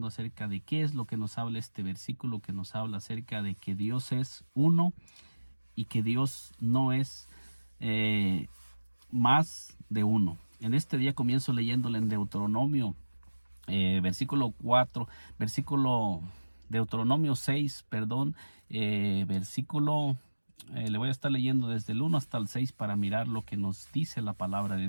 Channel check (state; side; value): inverted; both; correlation -1.00